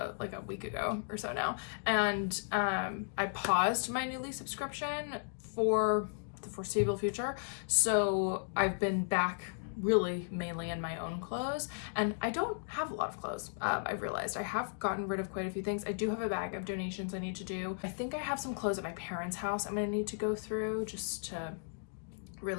like a week ago or so now, and I paused my Nuuly subscription for the foreseeable future. So I've been back really mainly in my own clothes, and I don't have a lot of clothes. I've realized I have gotten rid of quite a few things. I do have a bag of donations I need to do. I think I have some clothes at my parents' house I'm gonna need to go through just to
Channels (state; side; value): silent; right; digital silence